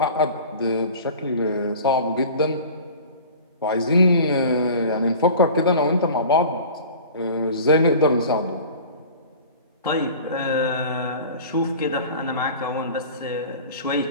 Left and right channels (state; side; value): inverted; both; correlation -0.40